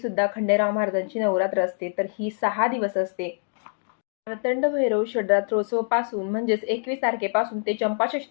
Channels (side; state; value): right; silent; digital silence